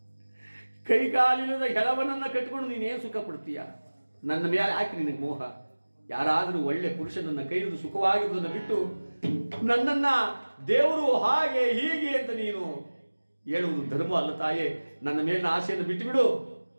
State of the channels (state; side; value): inverted; both; correlation -1.00